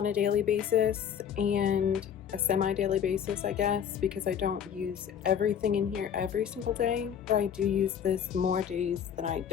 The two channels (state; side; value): quieter; right; 8.5 dB